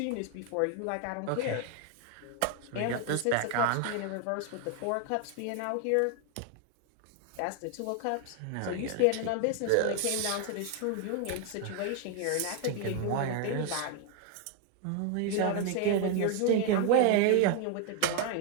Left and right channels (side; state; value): both; different; correlation 0.01